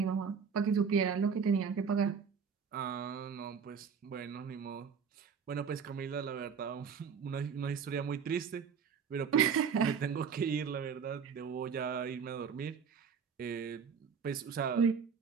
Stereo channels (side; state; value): left; quieter; 6.5 dB